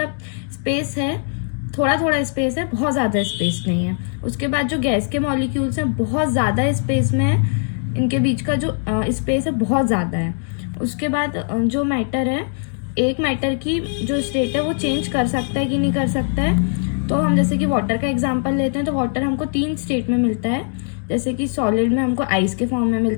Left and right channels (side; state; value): right; silent; 65 dB below the other